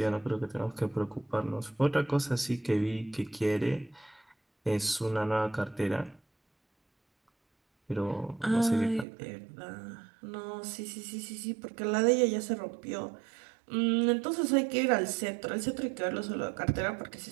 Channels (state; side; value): drops out; left; at 9.1 s